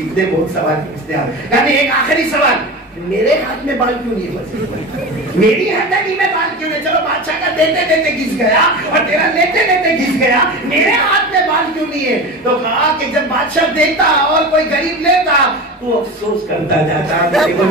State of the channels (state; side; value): normal; both; correlation 0.28